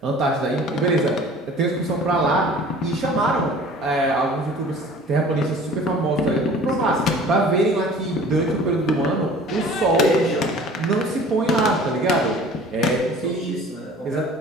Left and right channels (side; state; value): both; normal; correlation 0.46